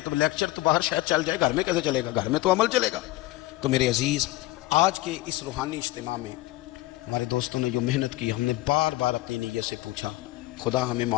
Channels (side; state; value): right; quieter; 18.0 dB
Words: تو لیکچر تو باہر شاید چل جائے، گھر میں کیسے چلے گا؟ گھر میں تو عمل چلے گا۔ تو میرے عزیز، آج کے اس روحانی اجتماع میں ہمارے دوستوں نے جو محنت کی، ہم نے بار بار اپنی نیت سے پوچھا، خدا ہمیں